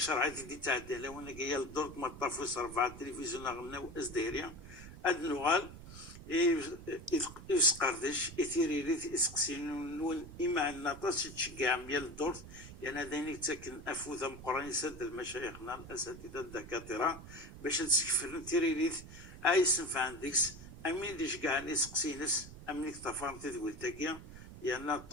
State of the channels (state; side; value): noise; right; rumble, 14 dB below the sound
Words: عادي دي تعدى لو انا جايه للدور ما طافوس رفع التلفزيون غناو ازدهريا اد نغال يسقردش يثيريريت يسقسين نون اما النطاس تشجع ميال الدور يعني هذين تسكن افوذ مقران يسد المشايخنا الاساتذه الدكاتره باش تسكفر تيريريت ايسنف عندكس امين ديش كاع يسقسينس امين تفهم تدويل تاكيا يعني